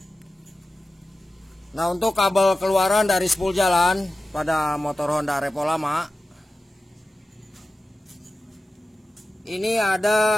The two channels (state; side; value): normal; both; correlation 0.94